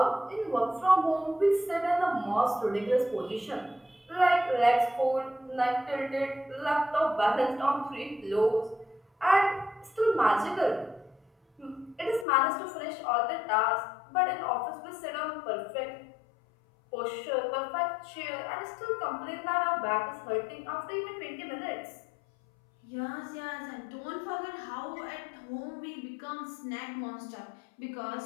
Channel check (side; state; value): right; drops out; at 12.2 s